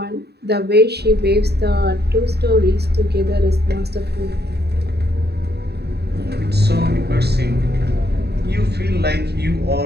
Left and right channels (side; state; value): left; late; 0.48 ms